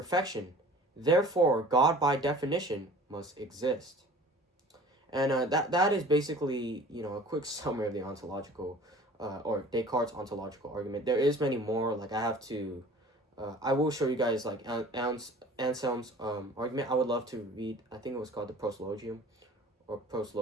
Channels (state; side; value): normal; both; correlation 0.46